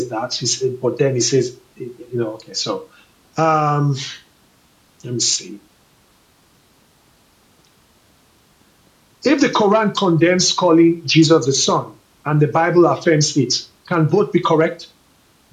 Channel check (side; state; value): both; identical; correlation 1.00